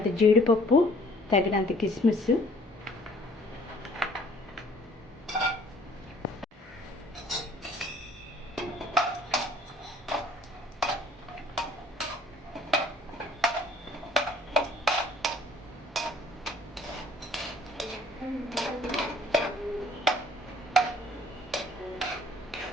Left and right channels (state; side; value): normal; both; correlation 0.56